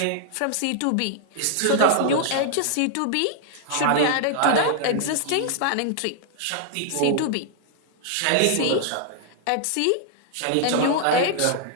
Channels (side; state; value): both; different; correlation -0.01